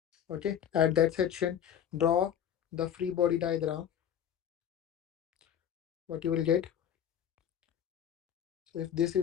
Okay, at that section, draw the free body diagram. What you will get? So if this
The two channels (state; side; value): quieter; right; 9.4 dB